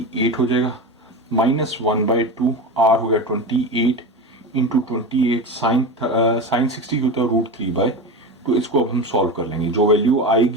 हो जाएगा, -1/2, आर हो गया 28 इंटू 28 साइन 60 होता है √3/2। इसको अब हम सॉल्व कर लेंगे, जो वैल्यू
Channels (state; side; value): normal; both; correlation 0.23